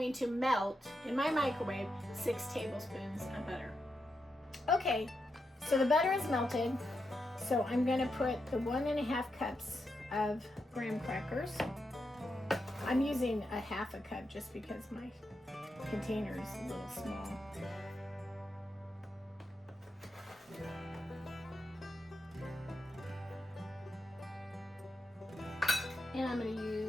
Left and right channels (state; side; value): normal; both; correlation 0.85